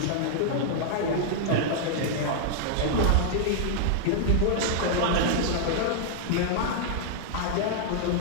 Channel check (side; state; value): both; different; correlation -0.01